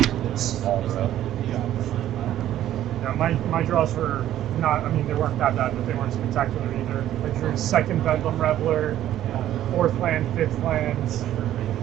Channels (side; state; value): left; quieter; 12.4 dB